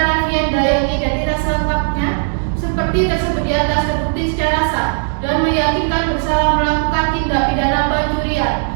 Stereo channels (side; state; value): left; silent; digital silence